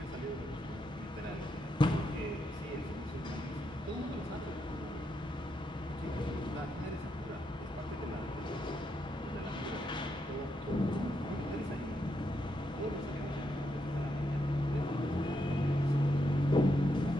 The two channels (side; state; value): both; normal; correlation 0.81